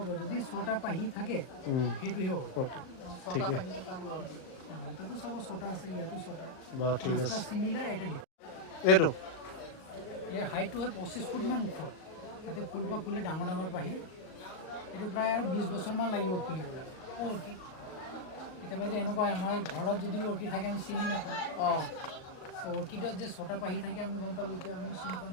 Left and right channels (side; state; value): right; late; 38 ms